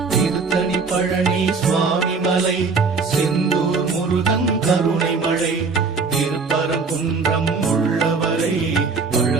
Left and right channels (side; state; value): left; quieter; 4.6 dB